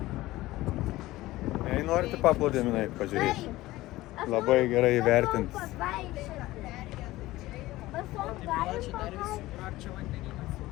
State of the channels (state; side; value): quieter; right; 17.6 dB